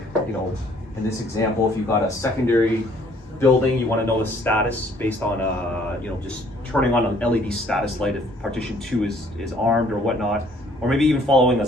in this example, if you got a secondary building, you want to know the status based on, just turning on an LED status light if partition 2 is armed or whatnot, or maybe even following a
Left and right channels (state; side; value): normal; both; correlation 0.60